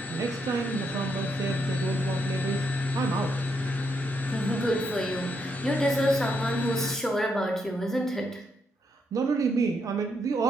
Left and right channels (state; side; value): normal; both; correlation 0.78